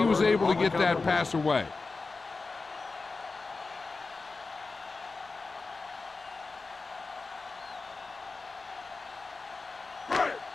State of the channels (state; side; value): quieter; right; 3.9 dB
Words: was able to get that pass away.